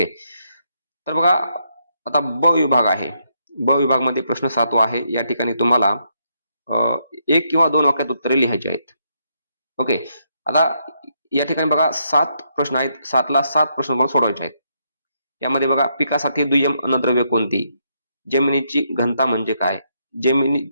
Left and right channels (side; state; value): both; inverted; correlation -0.77